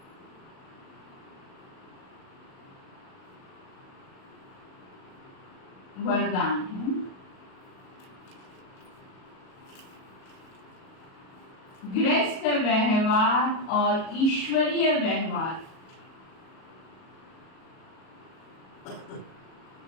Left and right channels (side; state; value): right; late; 37 ms